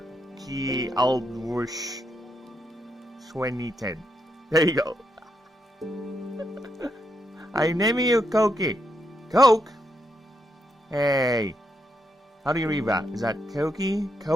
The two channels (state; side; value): normal; both; correlation 0.80